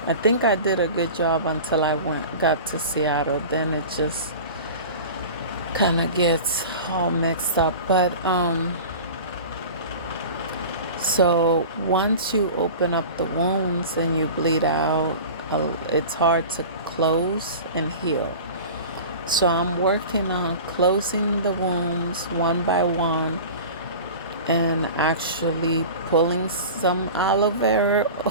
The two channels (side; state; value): both; inverted; correlation -0.36